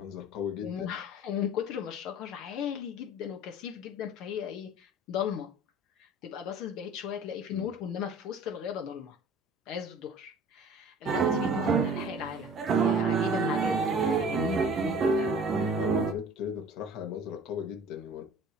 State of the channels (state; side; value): normal; both; correlation 0.45